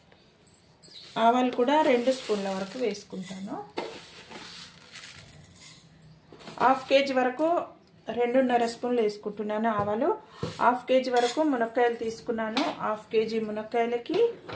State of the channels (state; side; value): identical; both; correlation 1.00